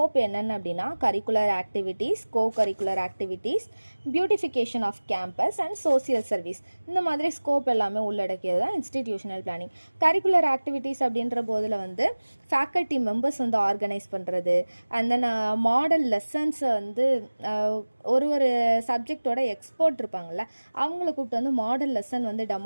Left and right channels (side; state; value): both; inverted; correlation -1.00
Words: என்னென்ன அப்படின்னா curricular activities, curricular activities, beautification of campus and social service. இந்த மாதிரி ஸ்கோப் எல்லாமே உள்ளடக்கியது தான் இன்ஸ்டிடியூஷனல் பிளானிங். கரிக்குலர் ஆக்டிவிட்டீஸ் அப்படின்ற போதில் வந்து ஃபேக்கல்ட்டி மெம்பர்ஸ் வந்து ஆர்கனைஸ் பண்ணுறது, அண்ட் தென் மாடல் லெசன்ஸை வந்து ஒரு சப்ஜெக்டோட எக்ஸ்பர்ட் இருப்பாங்கள்ல அவங்கள கூப்பிட்டு வந்து மாடல் லெசன் வந்து